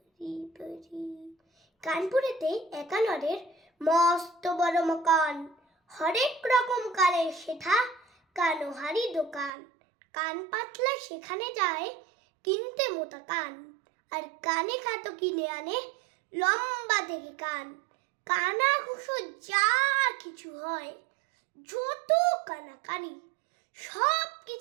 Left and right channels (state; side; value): drops out; left; at 9.5 s